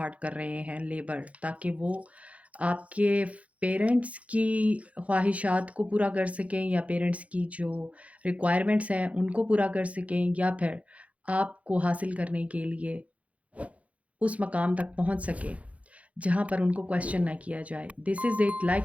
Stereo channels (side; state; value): left; late; 0.066 ms